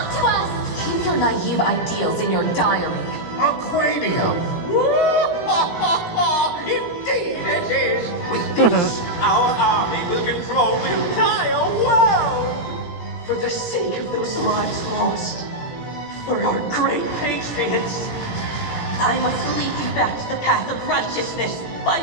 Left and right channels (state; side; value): late; right; 17 ms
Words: to us! Keep your naive ideals in your diary. Aquanium! Indeed it is! With this, our army will control the entire world! For the sake of those lives lost, for our great patriots, I must lead you back to the path of righteousness by